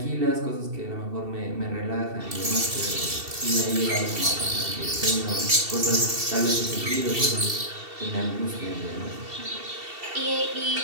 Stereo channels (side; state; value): left; late; 2.7 ms